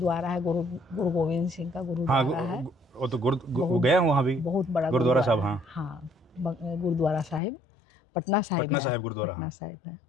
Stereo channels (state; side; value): drops out; right; at 7.4 s